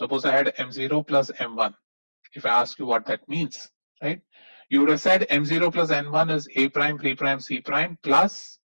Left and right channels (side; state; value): both; inverted; correlation -1.00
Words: I had M0 plus M1. If I ask you what that means, right? You would have said M0 plus N1 is A prime, B prime, C prime plus